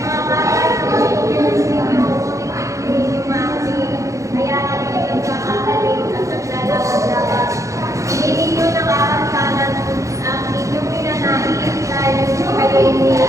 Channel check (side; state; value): left; late; 0.15 ms